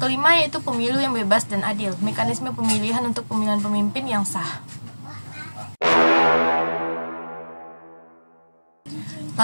yaitu pemilu yang bebas dan adil. Mekanisme pemilihan untuk pemilihan pemimpin yang sah.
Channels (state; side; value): inverted; both; correlation -1.00